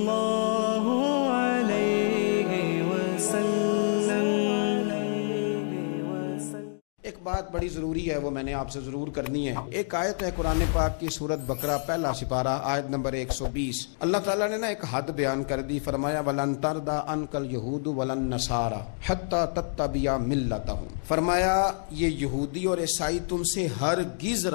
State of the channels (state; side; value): silent; right; digital silence